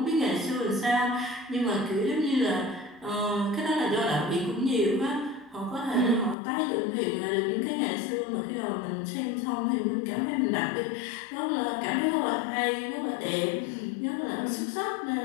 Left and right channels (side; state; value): right; drops out; at 6.4 s